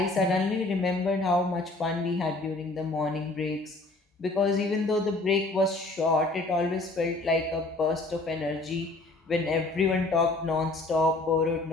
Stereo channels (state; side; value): quieter; right; 3.0 dB